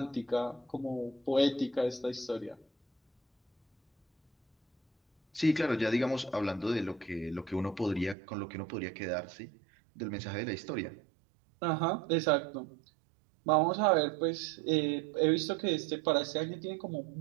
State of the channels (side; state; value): left; drops out; at 8.2 s